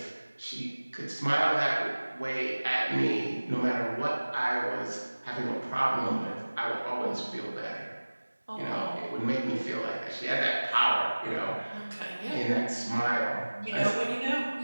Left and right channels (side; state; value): both; inverted; correlation -1.00